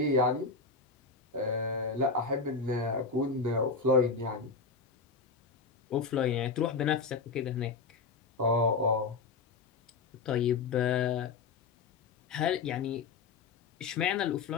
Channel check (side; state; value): right; quieter; 4.5 dB